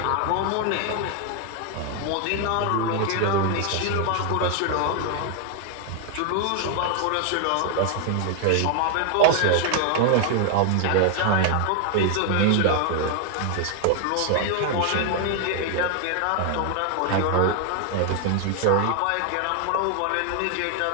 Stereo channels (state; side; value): different; both; correlation 0.00